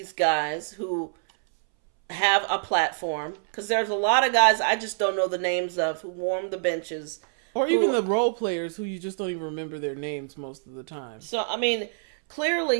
guys who have a platform, because there's a lot of guys I just don't know the names of who warm the benches, or even the role players who you just don't even remember their names most of the time. So I mean,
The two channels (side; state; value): left; silent; 61 dB below the other